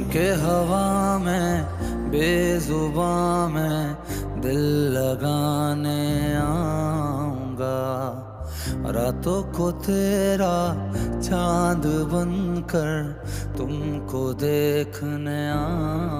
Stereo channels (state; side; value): identical; both; correlation 1.00